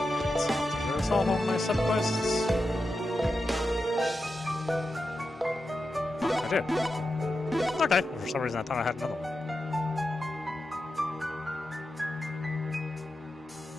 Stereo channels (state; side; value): normal; both; correlation 0.90